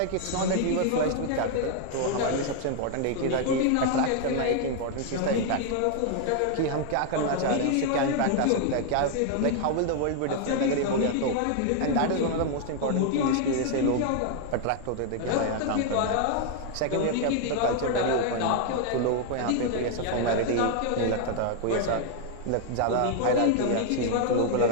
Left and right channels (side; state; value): both; different; correlation 0.00